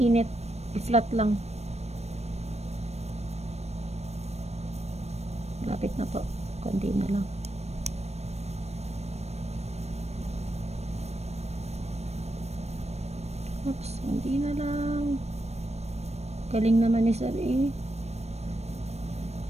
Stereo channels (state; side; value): late; left; 0.31 ms